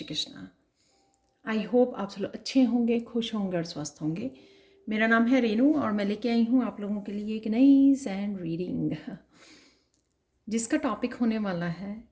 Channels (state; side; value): identical; both; correlation 1.00